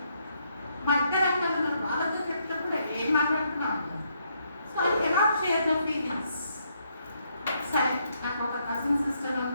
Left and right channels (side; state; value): both; inverted; correlation -0.74